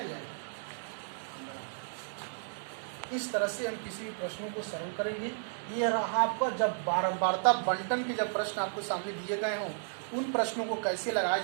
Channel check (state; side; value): silent; left; digital silence